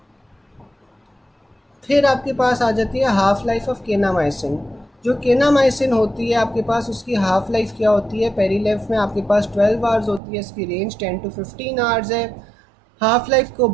फिर आपके पास आ जाती है हाफ लाइफ ऑफ केनामाइसिन। जो केनामाइसिन होती है आपके पास, उसकी हाफ लाइफ क्या होती है, पेरीलेफ में आपके पास 12 आवर्स होती है, इसकी रेंज 10 to 15 आवर्स है। हाफ लाइफ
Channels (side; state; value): left; drops out; at 10.2 s